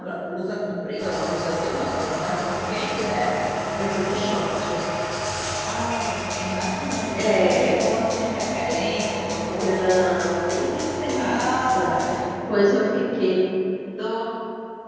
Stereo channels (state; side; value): identical; both; correlation 1.00